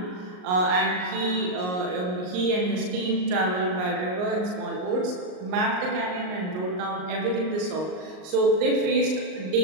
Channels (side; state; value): left; late; 39 ms